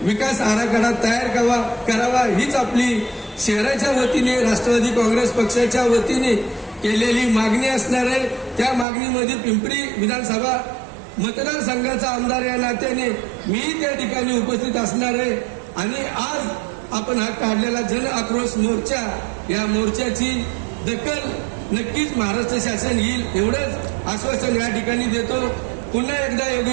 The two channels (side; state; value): left; drops out; at 8.8 s